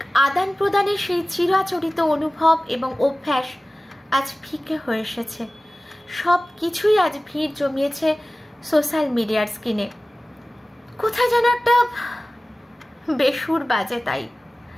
আদান প্রদানের সেই চিরাচরিত অনুভব এবং অভ্যাস আজ ফিকে হয়ে এসেছে। সব কিছুই আজ ভিড় জমিয়েছে সোশ্যাল মিডিয়ার স্ক্রিনে। কোথায় যেন একটা বেসুর বাজে। তাই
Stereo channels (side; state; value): both; normal; correlation 0.97